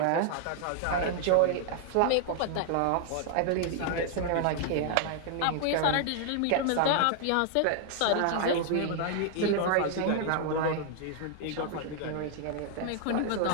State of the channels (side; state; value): both; different; correlation 0.00